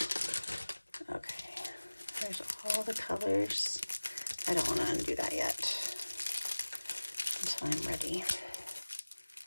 Okay, there's all the colors. I don't want to undo that yet until I'm ready.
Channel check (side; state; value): both; inverted; correlation -1.00